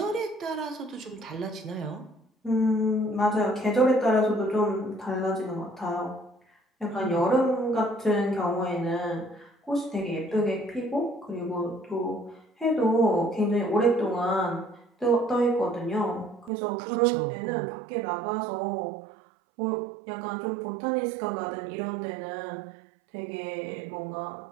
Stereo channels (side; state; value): left; drops out; at 16.5 s